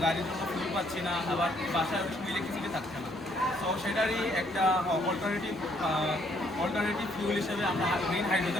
গাড়ির জন্য ফিউল পাচ্ছি না, আবার বাসায় অনেক সময় ইলেকট্রিসিটি থাকছে না। তো সেটারই একটা অল্টারনেটিভ ফিউল হিসেবে আমরা গ্রিন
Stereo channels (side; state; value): both; normal; correlation 0.68